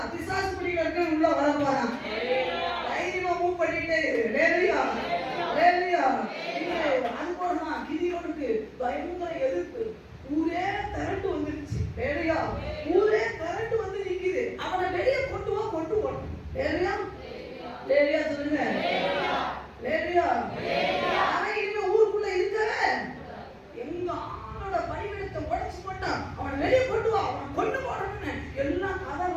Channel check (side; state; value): both; identical; correlation 1.00